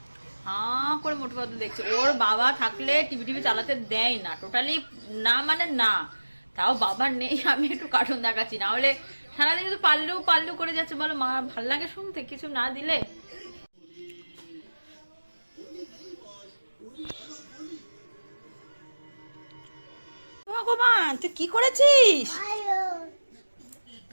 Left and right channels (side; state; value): both; inverted; correlation -1.00